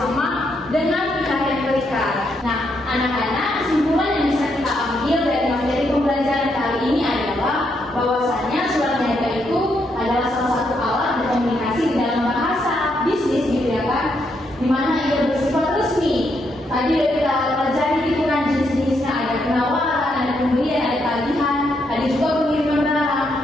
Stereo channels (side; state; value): both; normal; correlation 0.77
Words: dengan pihak yang terikat. Nah, anak-anak, kesimpulan yang bisa kita ambil dari materi pembelajaran kali ini adalah bahwasannya surat niaga itu adalah salah satu alat berkomunikasi di dalam bahasa bisnis gitu ya kan, di mana ia bersifat resmi. Tadi udah kita pelajari gitu kan jenis-jenisnya, ada penawaran, ada pembelian, ada tagihan, ada juga pengiriman barang.